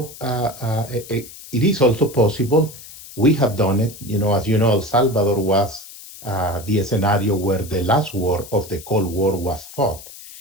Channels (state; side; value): noise; left; hiss, 16 dB below the sound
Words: also possible. We have done it. As you know, El Salvador was the scenario where the last war of the Cold War was fought,